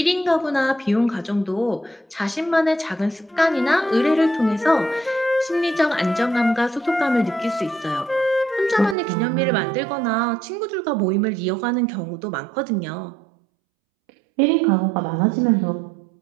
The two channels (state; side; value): drops out; left; at 9.0 s